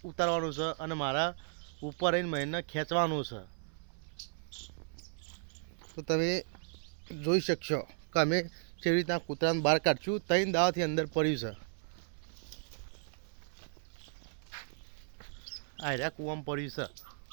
ઉતારવાનું છે અને મારા ઉપર રહીને મહીનને ખેંચવાનું છે. તો તમે જોઈ શકશો કે અમે કેવી રીતના કૂતરાને બહાર કાઢશું. 3 દાવાથી અંદર પડ્યું છે. આ રહ્યા કૂવામાં પડ્યું છે.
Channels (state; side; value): silent; left; 54 dB below the other